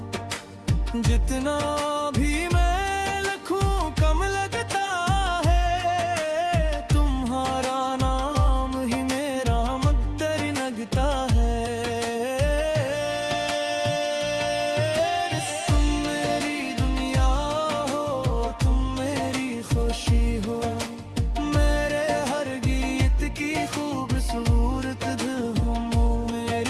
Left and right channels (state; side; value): identical; both; correlation 1.00